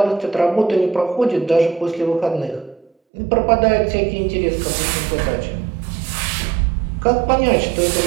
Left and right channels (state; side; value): drops out; left; at 2.9 s